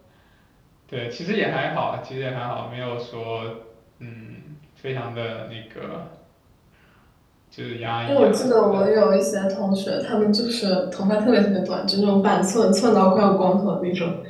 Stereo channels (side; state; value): both; identical; correlation 1.00